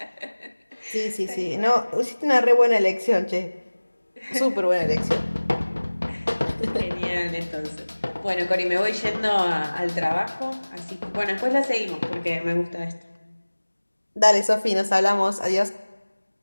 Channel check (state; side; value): inverted; both; correlation -1.00